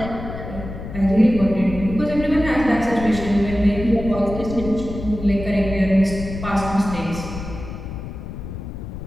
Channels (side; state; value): left; noise; rumble, 9 dB below the sound